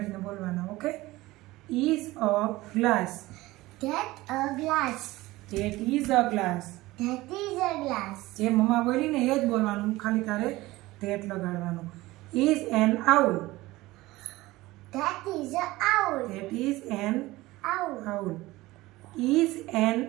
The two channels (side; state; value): left; quieter; 18.9 dB